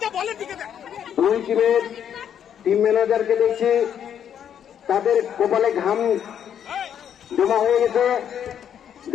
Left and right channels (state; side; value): quieter; right; 9.1 dB